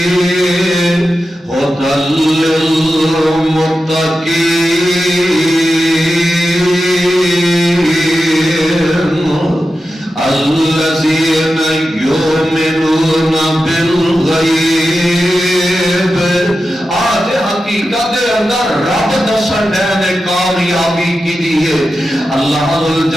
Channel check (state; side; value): normal; both; correlation 0.91